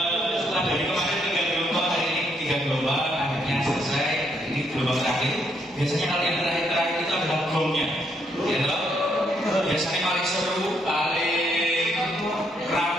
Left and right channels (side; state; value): both; normal; correlation 0.74